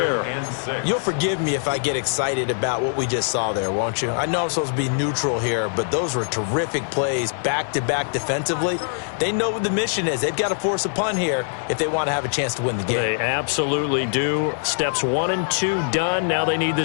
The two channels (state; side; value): silent; right; digital silence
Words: You'll forgive me if I get excited about what we just saw there, won't you? I know I'm supposed to be neutral here, but those were terrific plays back-to-back defensively. They know what the mission is. They've got to force a punt here if they want to have a chance to win the game. They absolutely do. Steps 1 and 2 done. Now they need